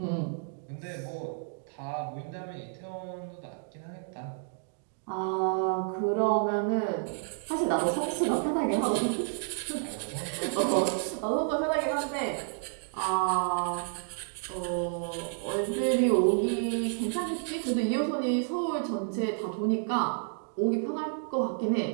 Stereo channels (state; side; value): silent; left; digital silence